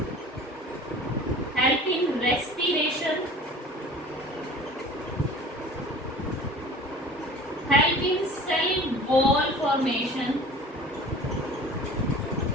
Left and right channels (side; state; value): both; normal; correlation 0.43